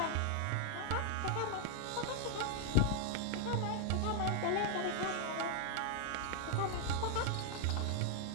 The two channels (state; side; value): different; both; correlation 0.00